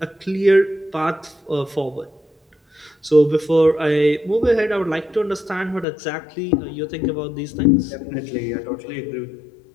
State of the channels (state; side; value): drops out; right; at 5.9 s